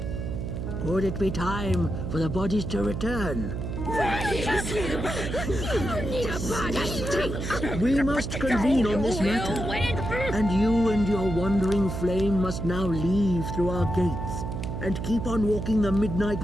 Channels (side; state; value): right; noise; hum, 4 dB below the sound